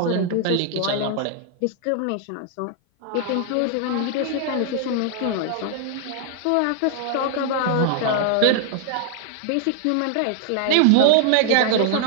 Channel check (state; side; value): different; both; correlation -0.01